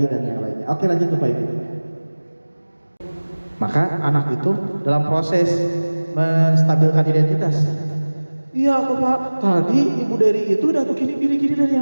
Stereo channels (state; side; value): inverted; both; correlation -1.00